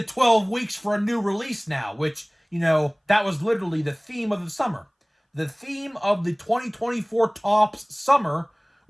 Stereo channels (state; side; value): identical; both; correlation 1.00